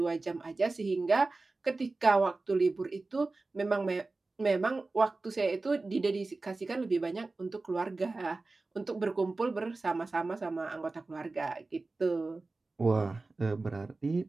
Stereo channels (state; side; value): quieter; left; 3.4 dB